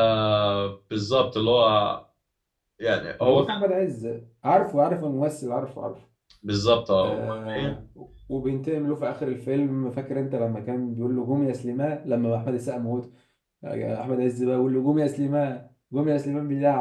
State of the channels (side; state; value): both; identical; correlation 1.00